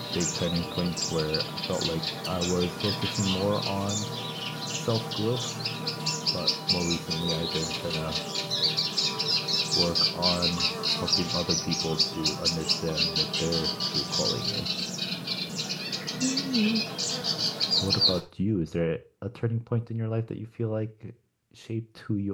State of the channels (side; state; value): both; identical; correlation 1.00